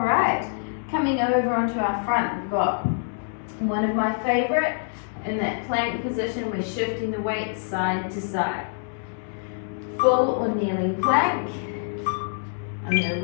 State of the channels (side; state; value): right; silent; digital silence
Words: right. Coming over onto our front, we've got one of my favorite. In that plank position, we're shifting the weight side to side. Full or kneeling plank. I'm going to